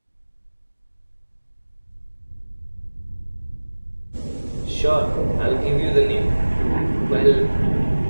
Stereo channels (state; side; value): inverted; both; correlation -1.00